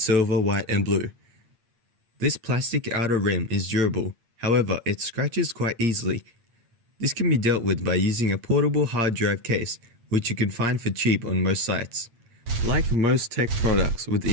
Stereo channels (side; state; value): left; late; 8.6 ms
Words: white and blue. This plastic outer rim is durable, however it scratches quite easily. This can be dealt with by using a portable hard drive case, which you can find for cheap on most sites. Like most tech products with